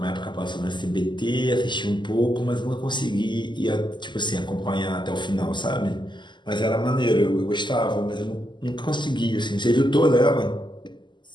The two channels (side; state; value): right; late; 0.22 ms